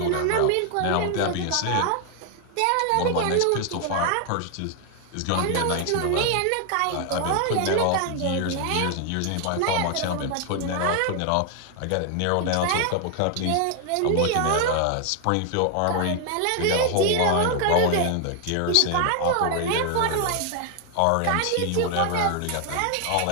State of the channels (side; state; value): both; different; correlation 0.00